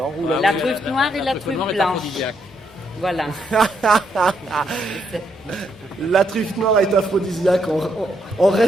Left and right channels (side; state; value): both; normal; correlation 0.76